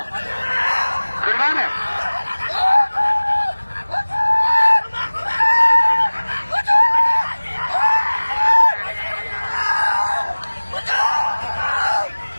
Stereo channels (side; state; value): both; inverted; correlation -1.00